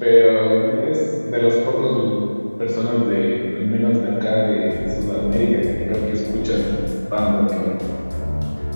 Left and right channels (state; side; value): inverted; both; correlation -1.00